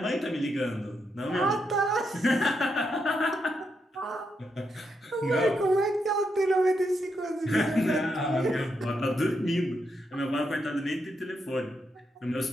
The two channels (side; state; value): both; normal; correlation 0.81